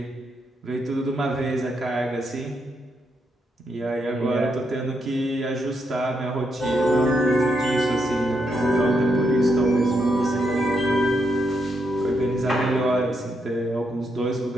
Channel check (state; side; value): normal; both; correlation 0.80